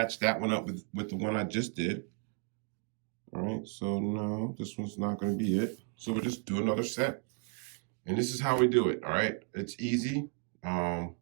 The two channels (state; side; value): quieter; left; 35.1 dB